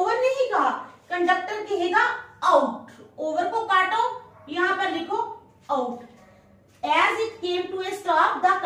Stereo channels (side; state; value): both; identical; correlation 1.00